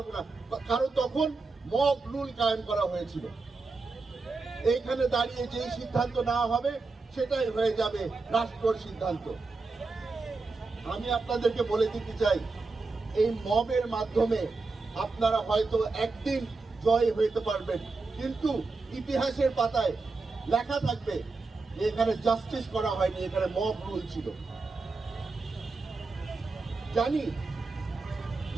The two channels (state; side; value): quieter; left; 3.9 dB